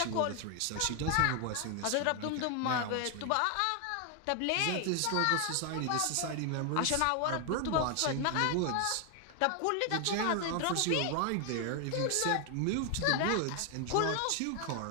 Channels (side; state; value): both; different; correlation 0.00